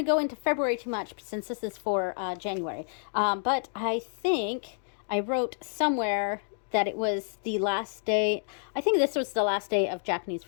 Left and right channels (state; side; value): silent; right; digital silence